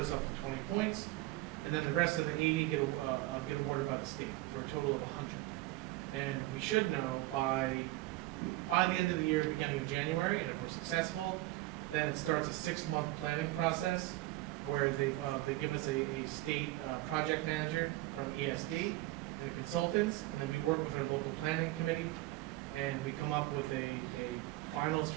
up to 20 points, and then the rest of the 80 get awarded by the state for a total of 100. And we should know by the end of the year, beginning of January, and if we're successful, then it starts a 6-month planning process where they give us a state project manager from ESD and the consultants, and then we work with our local planning committee, and we come up with a final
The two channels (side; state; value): left; quieter; 18.7 dB